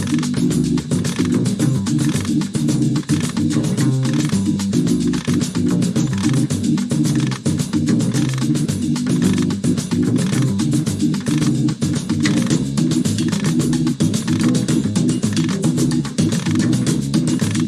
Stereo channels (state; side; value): identical; both; correlation 1.00